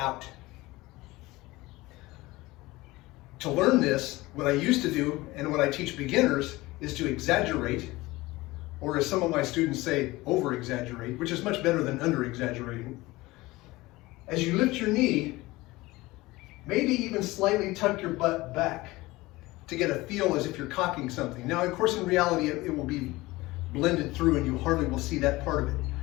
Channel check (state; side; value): quieter; right; 20.1 dB